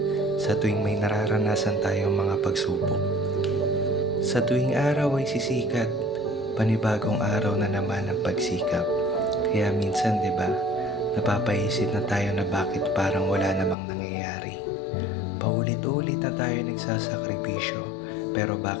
sa tuwing may nararanasan tayong mga pagsubok. Sa tuwing araw ay sisikat, panibagong araw na naman ang pagsikap. Kaya minsan, di ba, napapaisip na tayo na bakit parang wala namang nangyayari. Paulit-ulit na tayo nagsasakripisyo, pero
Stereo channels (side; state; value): right; drops out; at 13.8 s